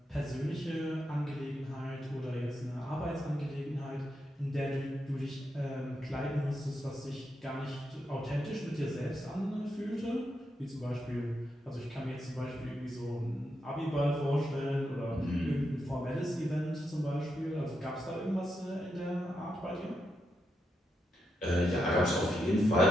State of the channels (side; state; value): both; normal; correlation 0.83